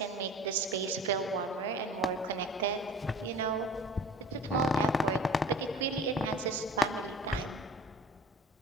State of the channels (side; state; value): both; normal; correlation 0.43